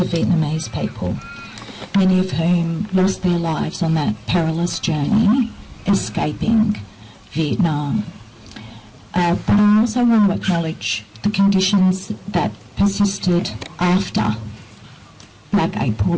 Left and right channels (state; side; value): identical; both; correlation 1.00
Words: Vietnamese people, many of whom lost their lives on that perilous journey escaping Vietnam. But I also want to acknowledge the conditions that persisted after Black